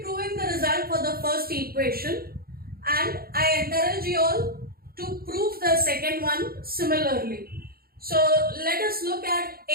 the result for the first equation, and I encourage you all to prove the second one similarly. So let us look at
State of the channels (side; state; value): left; late; 0.44 ms